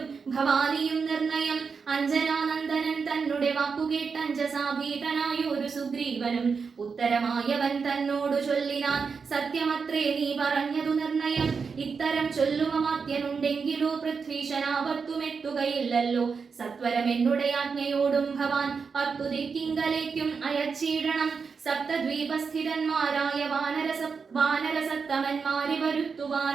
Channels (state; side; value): quieter; left; 5.4 dB